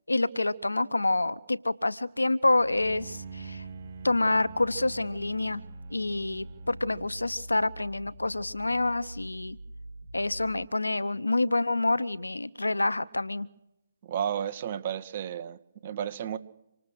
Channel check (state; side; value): inverted; both; correlation -0.95